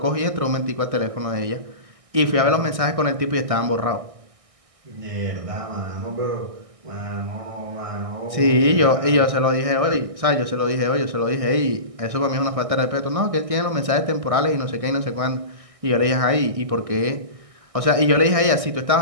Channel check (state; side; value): late; left; 1.6 ms